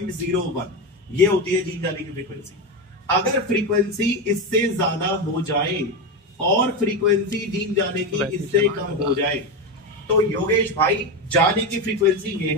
ये होती है जीन जाने की फ्रीक्वेंसी। अगर फ्रीक्वेंसी इससे ज्यादा हो जाए और फ्रीक्वेंसी जीन जाने की इससे कम हो जाए तो योगेश भाई जाने की फ्रीक्वेंसी ये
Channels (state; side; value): normal; both; correlation 0.14